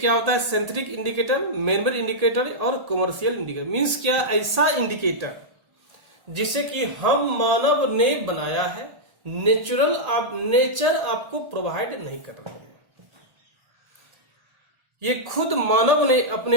होता है synthetic indicator, man made indicator और कॉमर्शियल इंडिकेटर। मींस क्या, ऐसा इंडिकेटर जिसे कि हम मानव ने बनाया है, नेचर आपको प्रोवाइड नहीं कर रही है, ये खुद मानव ने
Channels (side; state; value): left; late; 1.8 ms